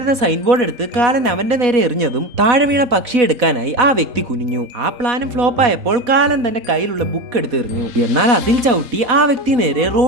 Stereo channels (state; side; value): late; left; 4.1 ms